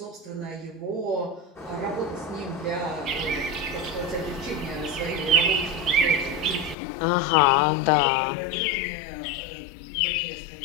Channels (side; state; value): right; drops out; at 6.8 s